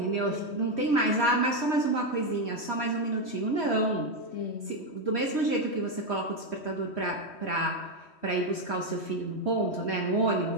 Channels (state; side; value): late; right; 3.1 ms